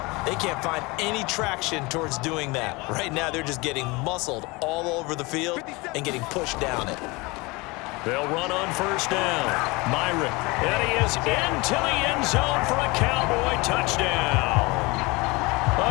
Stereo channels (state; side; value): quieter; right; 24.7 dB